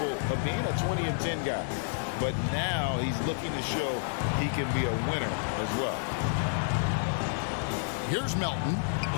of being a 20-10 guy. But now he's looking to show he can be a winner as well. Here's Melton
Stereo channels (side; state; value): right; silent; digital silence